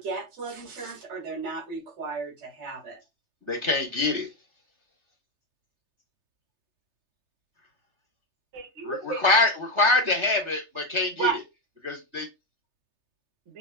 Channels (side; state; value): left; late; 3.3 ms